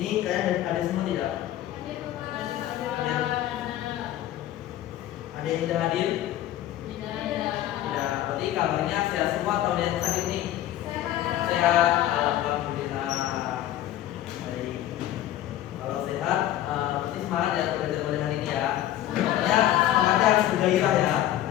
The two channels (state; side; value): quieter; right; 13.1 dB